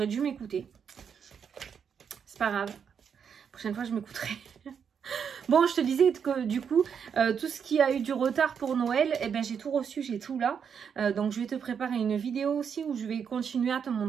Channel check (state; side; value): quieter; left; 7.1 dB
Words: dû m'écouter. C'est pas grave. La prochaine fois, je m'écouterai. Bon, je te disais que du coup, tout ce qui a eu du retard pour Noël, eh ben, j'ai tout reçu, j'ai tout là. Donc, je vais te préparer une vidéo aussi où je vais continuer à te